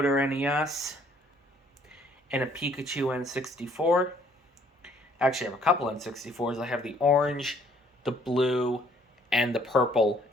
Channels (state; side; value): normal; both; correlation 0.62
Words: NES, and a Pikachu N64. Actually, I have a couple N64s. I have the orange, the blue, and the purple